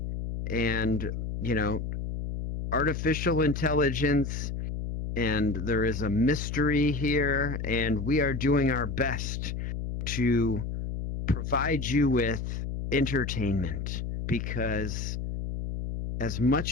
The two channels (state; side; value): noise; left; hum, 4 dB below the sound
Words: and, you know, artificial intelligence, and there is a mystery here, and we are doing our best to provide you with entertainment because as